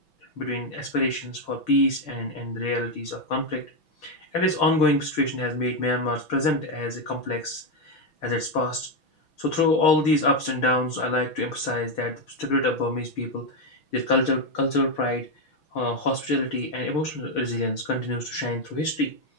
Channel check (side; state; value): right; late; 6.0 ms